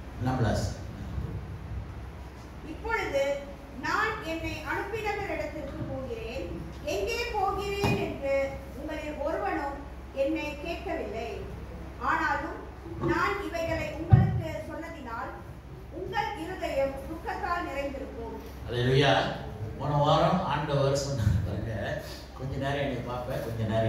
16. இப்பொழுது நான் என்னை அனுப்பினவரிடத்திற்கு போகிறேன், எங்கே போகிறேன் என்று உங்களில் ஒருவனும் என்னை கேட்கவில்லை. ஆனாலும் நான் இவைகளை உங்களுக்கு சொன்னதினால் உங்கள் இருதயம் துக்கத்தால் நிறைந்திருக்கும். அல்லேலூயா. போன வாரம் ஆண்டவர் சொன்னாங்க, கொஞ்ச நேரம் என்னை பார்ப்பேன், கொஞ்ச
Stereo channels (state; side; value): identical; both; correlation 1.00